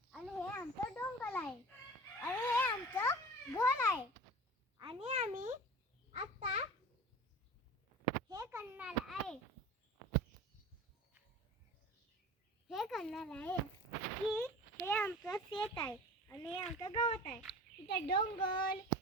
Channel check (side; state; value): both; normal; correlation 0.37